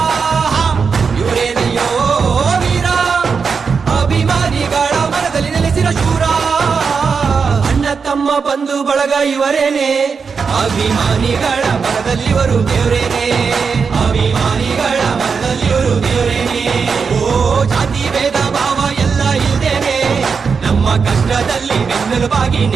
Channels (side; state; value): left; quieter; 5.5 dB